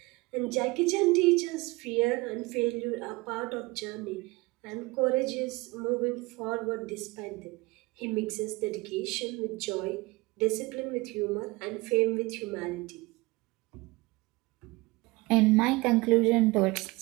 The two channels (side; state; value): left; quieter; 22.9 dB